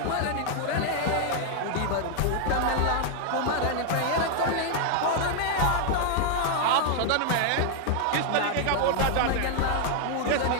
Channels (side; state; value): both; different; correlation 0.00